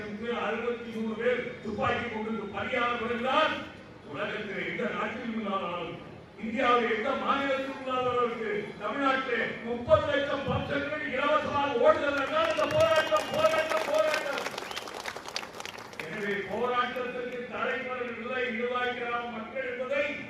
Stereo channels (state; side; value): identical; both; correlation 1.00